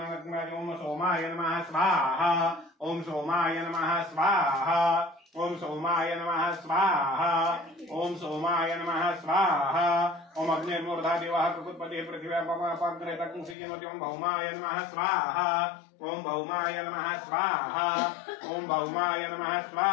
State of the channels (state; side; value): drops out; right; at 13.6 s